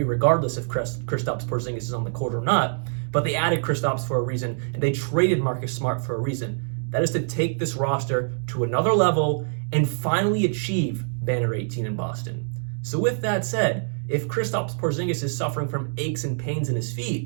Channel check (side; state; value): left; silent; 62 dB below the other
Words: regardless if Kristaps Porziņģis is on the court or not. But they added Kristaps for a reason, and they traded Marcus Smart for a reason. That is to take this roster to another level and finally achieve Banner 18 in Boston. So with that said, if Kristaps Porziņģis is suffering from aches and pains in his